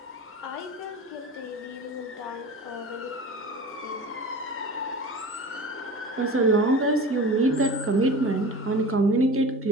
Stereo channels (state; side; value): normal; both; correlation 0.35